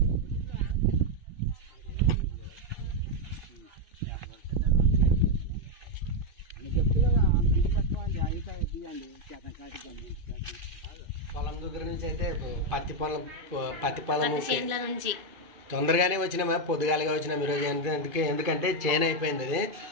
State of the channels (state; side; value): late; left; 2.5 ms